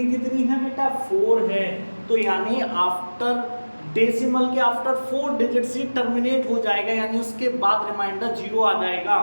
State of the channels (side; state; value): both; inverted; correlation -1.00